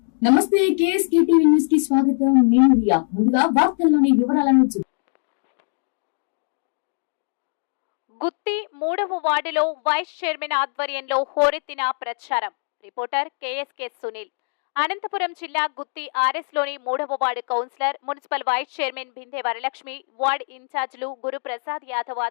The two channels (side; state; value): right; silent; 64 dB below the other